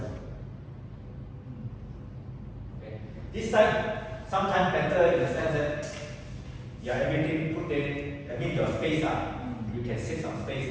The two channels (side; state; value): both; identical; correlation 1.00